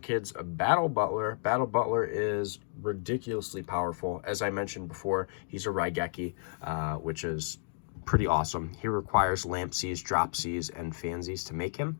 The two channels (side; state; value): right; silent; digital silence